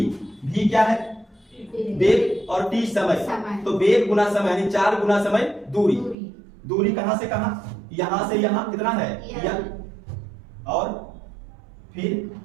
V क्या है, वेग, और T समय, तो वेग गुना समय यानी 4 गुना समय दूरी। दूरी कहां से कहां, यहां से यहां कितना है, L, और फिर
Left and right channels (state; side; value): drops out; left; at 6.2 s